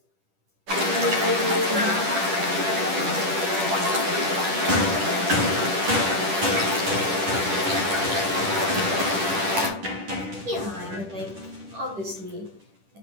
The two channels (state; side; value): late; left; 10 ms